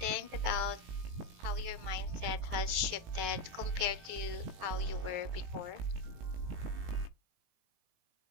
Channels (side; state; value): left; late; 18 ms